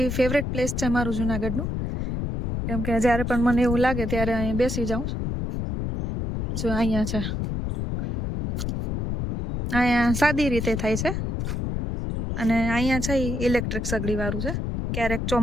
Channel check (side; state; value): left; noise; rumble, 2 dB below the sound